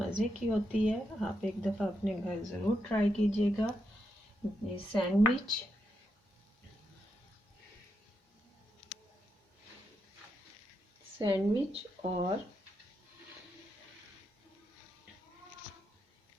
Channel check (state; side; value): normal; both; correlation 0.83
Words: की होती है। आप एक दफ़ा अपने घर ज़रूर ट्राई कीजिएगा। ये सैंडविच